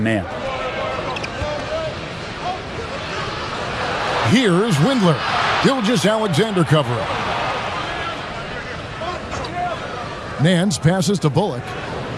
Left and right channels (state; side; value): identical; both; correlation 1.00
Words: man. Here's Windler. Gilgeous-Alexander covering. Nance passes to Bullock.